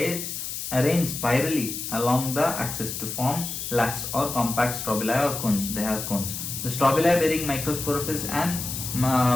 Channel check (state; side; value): noise; left; hiss, 6 dB below the sound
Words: spirally along the axis to form lax or compact strobili or cones. They have cones. The strobili bearing microsporophylls and